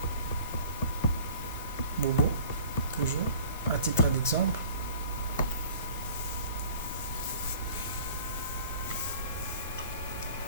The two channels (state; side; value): inverted; both; correlation -0.47